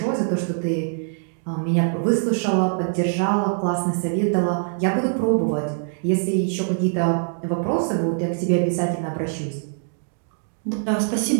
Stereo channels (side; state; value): left; silent; digital silence